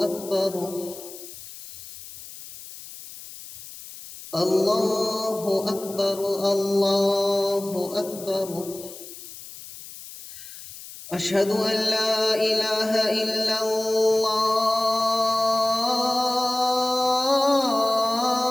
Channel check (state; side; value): noise; left; hiss, 15 dB below the sound